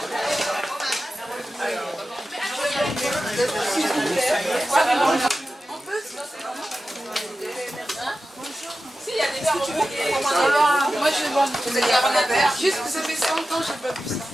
Si, il y a des verres. Moi, je vais boire. Vous allez avoir un verre. Juste que ça fait 100 ans que je n'ai pas bu ça.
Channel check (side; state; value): both; normal; correlation 0.93